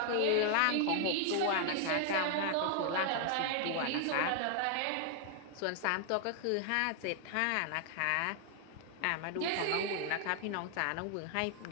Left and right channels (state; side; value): different; both; correlation 0.00